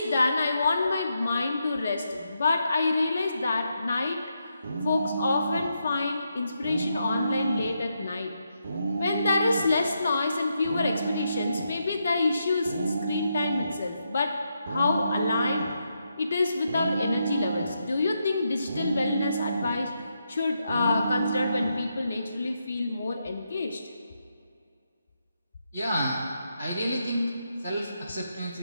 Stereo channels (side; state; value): both; inverted; correlation -0.82